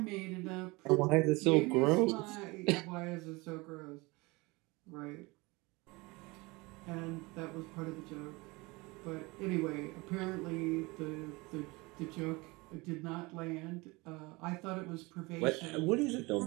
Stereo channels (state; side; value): quieter; left; 24.3 dB